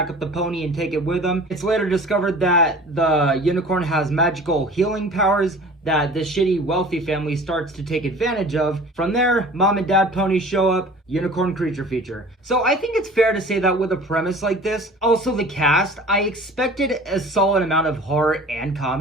up the pony and take it with them. It's later discovered that the unicorn has magical healing powers that this shitty wealthy family starts to take advantage of. From there, mom and dad pony show up, unicorn creature feature. So I think it's fair to say that with a premise like this, also the cast, I expected a solid amount of horror and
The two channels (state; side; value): normal; both; correlation 0.43